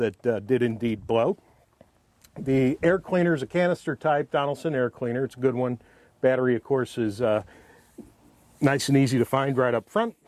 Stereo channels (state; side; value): identical; both; correlation 1.00